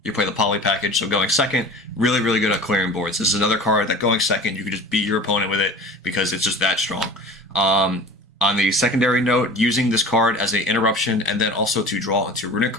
you play the poly package, so going second, really good at clearing boards. This is another card that going second, you can just beat your opponent with it because it's just that strong. On the secondary note, using this card as an interruption and then also to draw into Runick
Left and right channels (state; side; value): normal; both; correlation 0.40